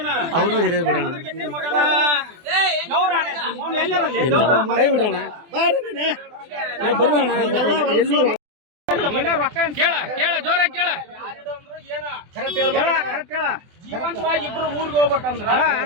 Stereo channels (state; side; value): late; left; 24 ms